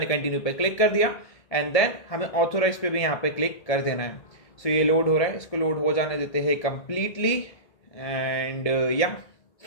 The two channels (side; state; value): right; late; 1.8 ms